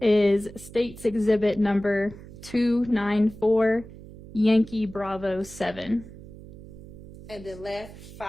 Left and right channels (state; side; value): noise; right; hum, 17 dB below the sound